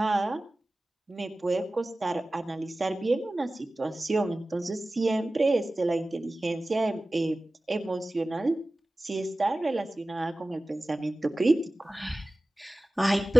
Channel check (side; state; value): both; normal; correlation 0.97